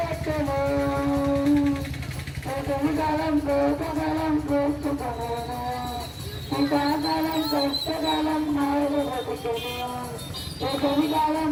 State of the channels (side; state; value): both; identical; correlation 1.00